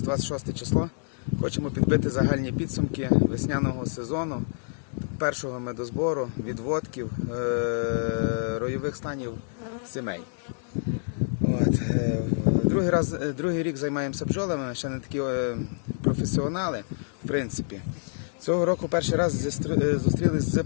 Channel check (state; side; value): silent; right; digital silence